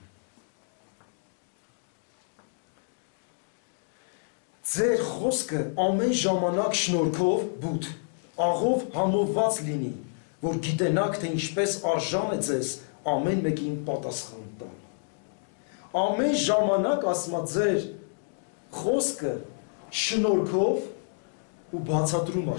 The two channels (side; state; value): right; silent; digital silence